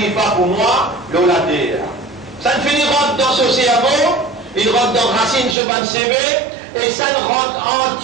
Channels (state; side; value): drops out; left; at 5.6 s